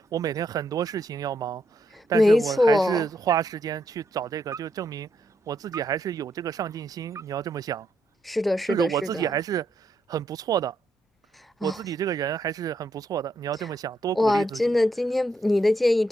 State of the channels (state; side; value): normal; both; correlation 0.78